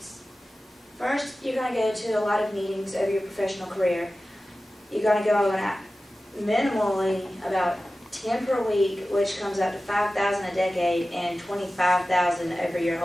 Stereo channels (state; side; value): normal; both; correlation 0.95